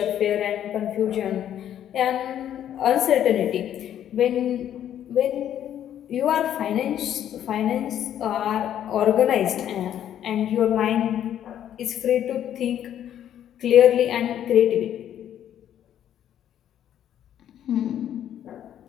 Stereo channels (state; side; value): quieter; right; 10.6 dB